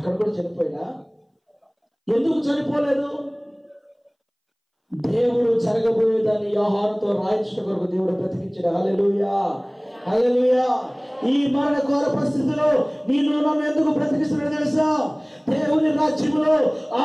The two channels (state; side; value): identical; both; correlation 1.00